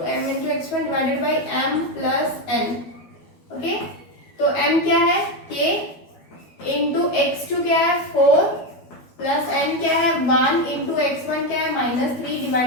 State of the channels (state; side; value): late; right; 12 ms